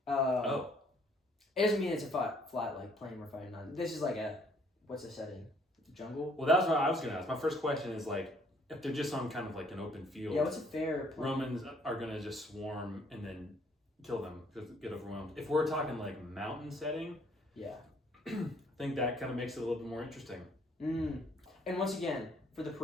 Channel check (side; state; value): both; normal; correlation 0.63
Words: it doesn't mean it's a flat like plane we're fighting on. This is like what's the setting? Jungle. Well, that's what I was gonna ask. My first question is like, if they're just on kind of like an open field. Yeah, what's a fair plane? Romans are gonna just swarm and then kill them, just get overwhelmed. If we're talking like mountain setting, Yeah. I think that kind of makes it a little bit more interesting. And once again, for the